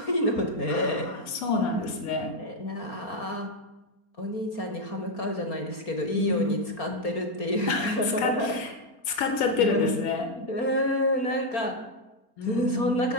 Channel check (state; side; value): late; right; 4.3 ms